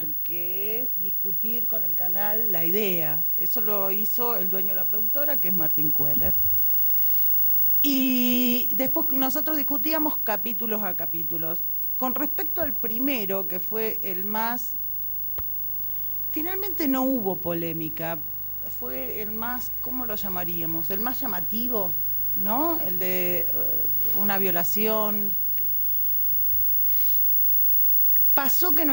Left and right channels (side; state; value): both; identical; correlation 1.00